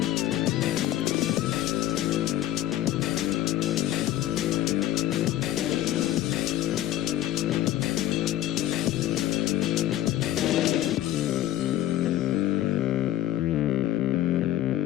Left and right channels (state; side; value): quieter; right; 13.6 dB